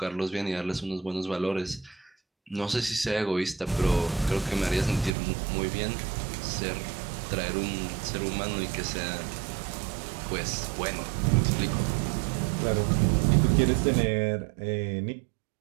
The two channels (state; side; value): drops out; left; at 5.1 s